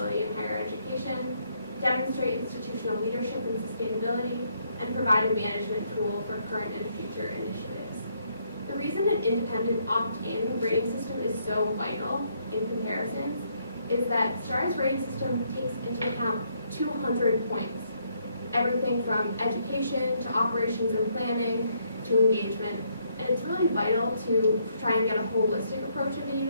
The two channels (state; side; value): inverted; both; correlation -0.72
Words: in higher education, demonstrate institutional leadership in sustainability, and provide a management tool for current and future initiatives. The reason an independent opt-in rating system is so vital in comparisons is that STAR's rating system takes into account 200 points, everything from education to operations and planning to engagement. And it's really vital to try and get a holistic approach of a